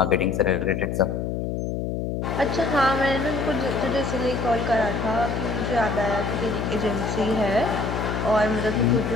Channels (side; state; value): left; noise; hum, 2 dB below the sound